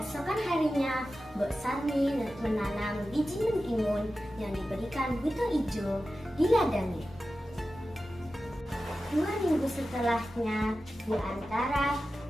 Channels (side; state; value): both; normal; correlation 0.93